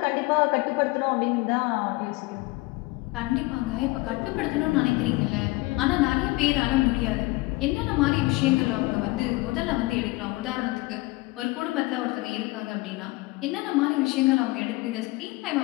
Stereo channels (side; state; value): right; quieter; 22.2 dB